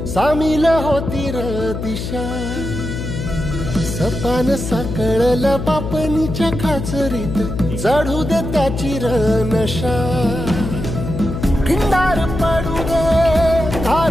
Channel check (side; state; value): left; noise; hum, 5 dB below the sound